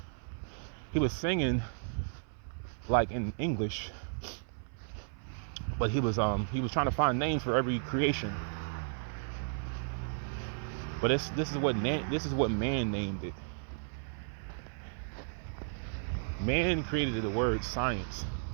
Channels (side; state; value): left; silent; 55 dB below the other